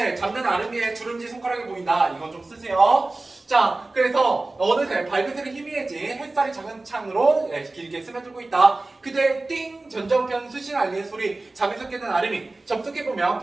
잡는 아름이의 주름지 손가락이 보인다. 이건 좀 쓰세요. 자, 그래서 어느새 발그스를 희미해진 햇살이 작은 창으로 예, 길게 스며들고 있다. 그대 띵 전정편 수신 알리는 소리 잠에서 깨는 아름이 접속해보면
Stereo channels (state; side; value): quieter; left; 3.1 dB